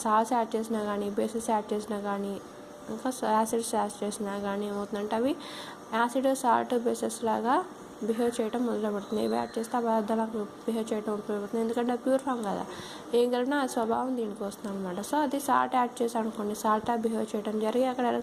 సాల్ట్స్ యాడ్ చేసినా కానీ బేసెస్ యాడ్ చేసినా కానీ ఇంకా యాసిడ్స్ యాడ్ చేసినా కానీ ఏమవుతుందంటే అవి యాసిడ్ సాల్ట్ బేసెస్ లాగా బిహేవ్ చేయడం మొదలుపెడుతుంది. ఇవి యాడ్ చేస్తే ఆ పదార్థాలకు బిహేవ్ చేయడం ఉపయోగపడుతుంది. ఎందుకంటే ప్యూర్ ఫామ్ కదా, ఏం కలిగినా ఆ స్వభావం దీనికి వస్తుంది అనమాట. సో అది సాల్ట్ యాడ్ చేసి అనుకోండి, సాల్ట్ బిహేవ్ చేయడం జరిగి అక్కడ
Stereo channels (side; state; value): both; identical; correlation 1.00